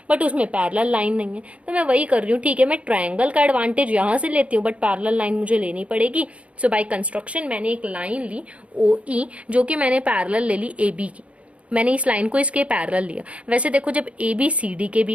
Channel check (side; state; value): left; late; 0.063 ms